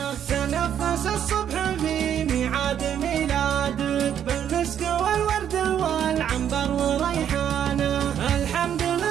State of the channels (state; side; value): quieter; left; 9.5 dB